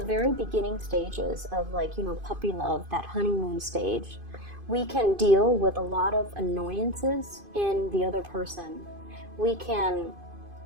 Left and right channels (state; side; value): late; left; 2.5 ms